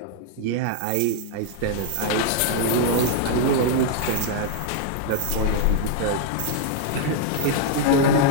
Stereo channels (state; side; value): different; both; correlation 0.00